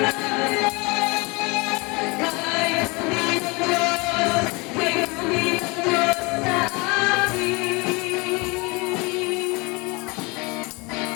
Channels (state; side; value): quieter; right; 27.0 dB